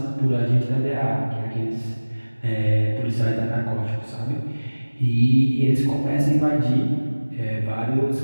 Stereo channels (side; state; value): both; inverted; correlation -1.00